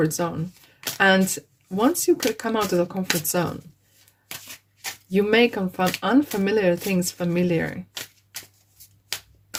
zone. And once you could come out of the comfort zone, you make unfamiliar things familiar.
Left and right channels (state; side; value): identical; both; correlation 1.00